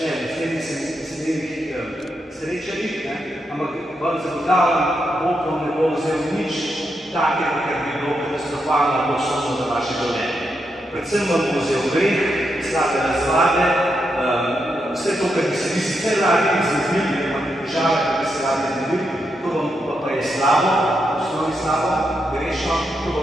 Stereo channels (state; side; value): normal; both; correlation 0.83